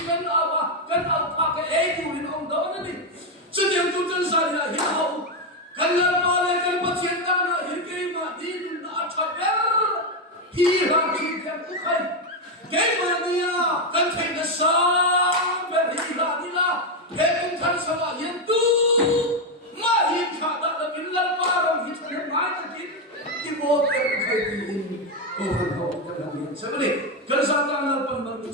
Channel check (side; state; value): both; normal; correlation 0.07